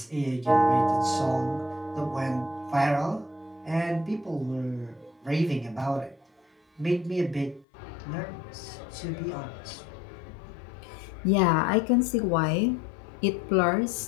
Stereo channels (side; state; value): right; drops out; at 7.7 s